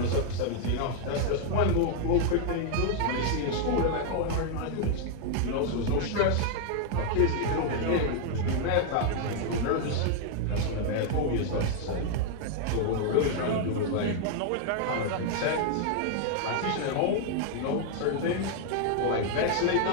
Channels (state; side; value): different; both; correlation 0.00